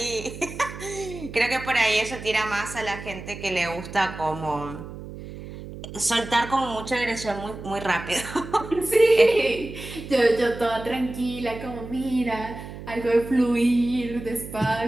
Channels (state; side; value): noise; right; hum, 12 dB below the sound